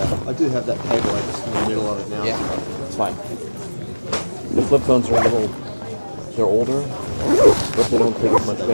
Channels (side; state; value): both; inverted; correlation -1.00